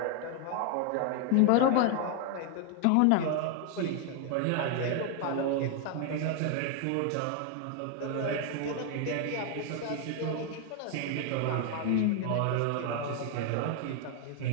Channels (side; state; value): both; different; correlation 0.00